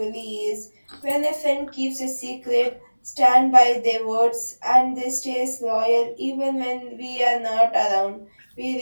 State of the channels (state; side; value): inverted; both; correlation -1.00